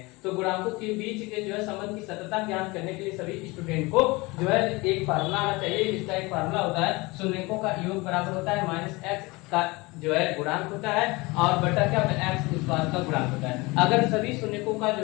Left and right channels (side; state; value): right; quieter; 23.9 dB